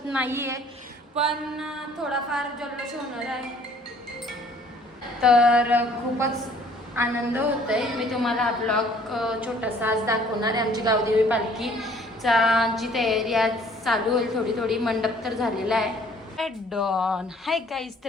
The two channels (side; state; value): both; normal; correlation 0.57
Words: नाही आहे, पण थोडाफार जल्लोष होणार आहे. तर खूपच आनंद होतोय. मी तुम्हाला ब्लॉग छोटासा आज दाखवणार आहे. आमची गावदेवी पालखीचा जी तयारी आज चालू होईल, थोडी थोडी मंडप तर झालेला आहे. डॉन हाय गाईज,